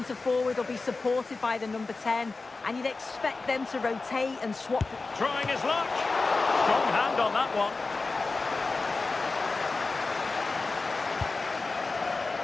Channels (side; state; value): right; quieter; 3.8 dB